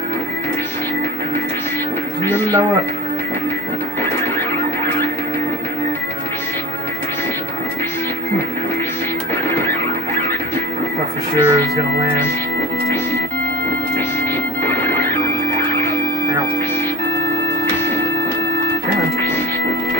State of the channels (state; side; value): normal; both; correlation 0.37